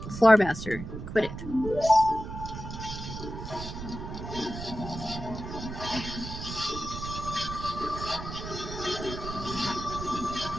Floor Master. Quit it.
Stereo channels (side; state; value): right; noise; rumble, 8 dB below the sound